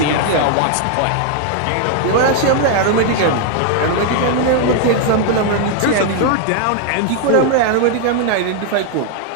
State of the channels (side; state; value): both; different; correlation 0.00